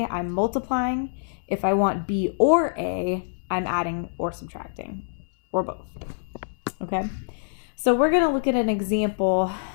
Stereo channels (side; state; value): right; silent; 62 dB below the other